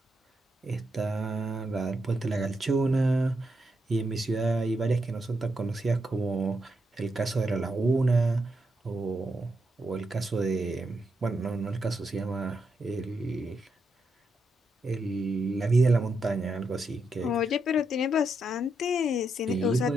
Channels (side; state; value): both; normal; correlation 0.82